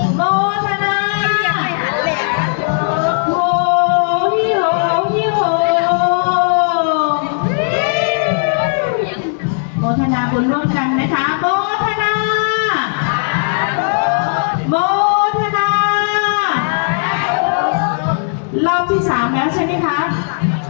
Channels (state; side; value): silent; right; 69 dB below the other